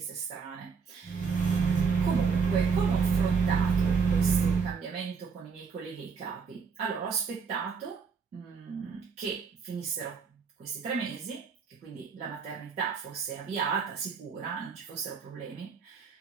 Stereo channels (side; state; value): left; quieter; 5.6 dB